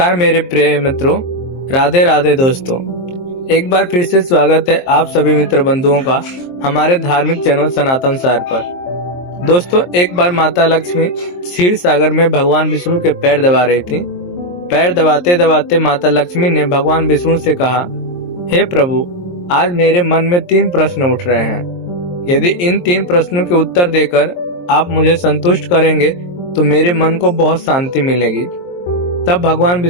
मेरे प्रिय मित्रों, राधे राधे दोस्तों। एक बार फिर से स्वागत है आप सभी मित्र बंधुओं का हमारे धार्मिक चैनल सनातन सार पर। दोस्तों, एक बार माता लक्ष्मी क्षीर सागर में भगवान विष्णु के पैर दबा रही थी। पैर दबाते दबाते माता लक्ष्मी ने भगवान विष्णु से कहा, हे प्रभु, आज मेरे मन में 3 प्रश्न उठ रहे हैं। यदि इन 3 प्रश्नों के उत्तर देकर आप मुझे संतुष्ट करेंगे तो मेरे मन को बहुत शांति मिलेगी। तब भगवान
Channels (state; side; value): late; right; 23 ms